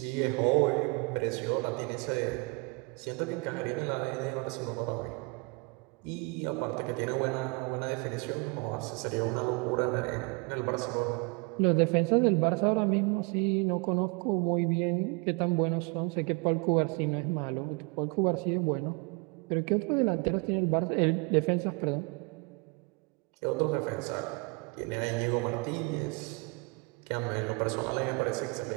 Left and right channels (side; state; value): left; quieter; 30.3 dB